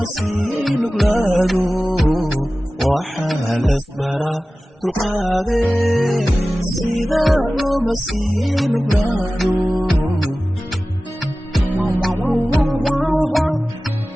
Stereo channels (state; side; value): normal; both; correlation 0.96